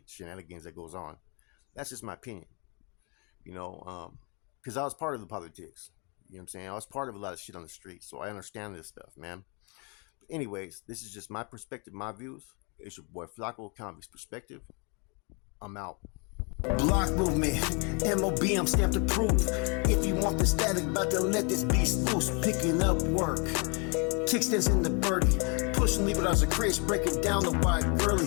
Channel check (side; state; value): right; quieter; 33.8 dB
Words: that goes on. That's just my opinion. You know, because I was part of the politics. You know what I'm saying? I was part of a lot of shit on the street, so I understand this stuff, man. But anyways, this is just my perspective, my views. It's your boy Flacco, Convict's Perspective. I'm out. Block movement, MOB, I'm stamped approved. If you want the static, about to let this beast loose. Picking up work, kickstands in the birdie, pushing levers as a Chris, breaking down the wide